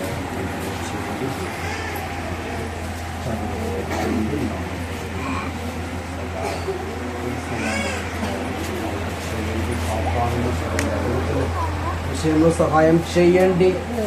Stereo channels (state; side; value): identical; both; correlation 1.00